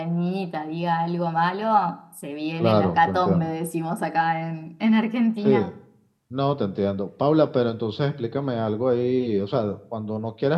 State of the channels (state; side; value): identical; both; correlation 1.00